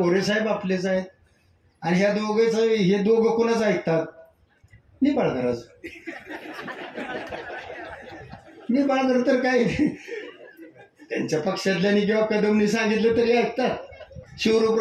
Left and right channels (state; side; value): identical; both; correlation 1.00